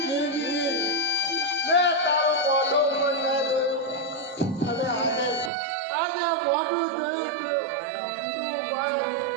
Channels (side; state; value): left; drops out; at 5.5 s